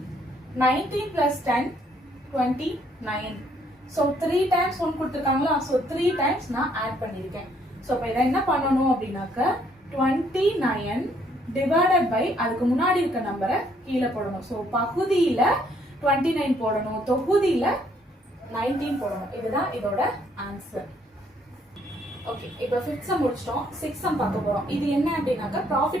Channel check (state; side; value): normal; both; correlation 0.67